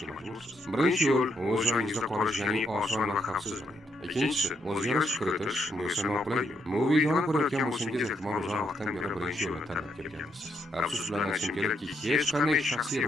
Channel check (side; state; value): both; normal; correlation 0.77